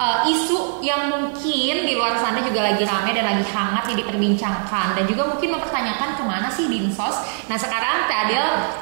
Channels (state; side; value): silent; left; digital silence